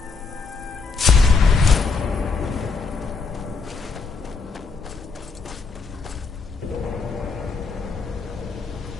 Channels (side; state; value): right; quieter; 4.6 dB